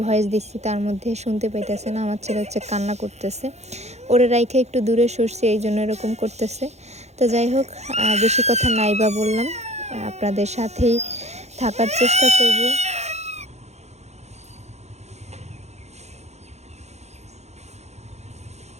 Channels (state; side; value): late; left; 0.32 ms